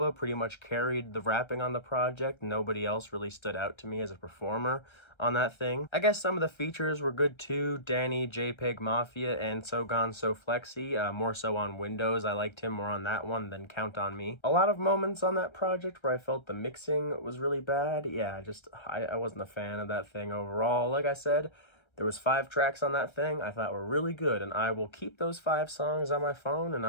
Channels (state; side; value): late; right; 1.3 ms